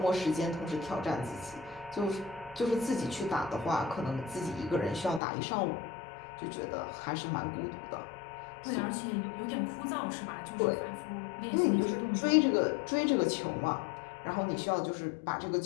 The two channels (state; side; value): drops out; right; at 5.2 s